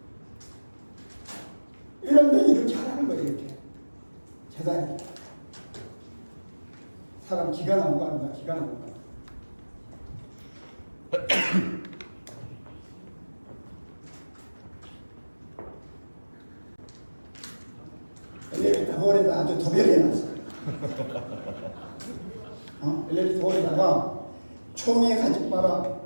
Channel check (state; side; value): inverted; both; correlation -1.00